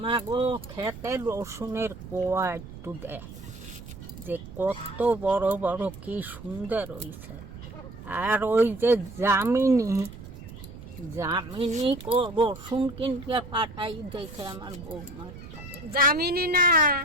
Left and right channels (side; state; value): right; noise; rumble, 14 dB below the sound